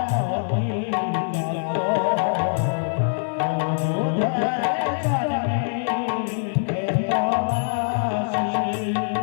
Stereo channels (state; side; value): silent; right; 63 dB below the other